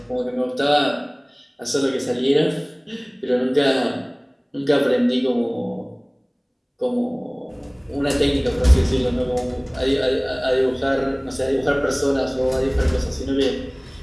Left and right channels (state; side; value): identical; both; correlation 1.00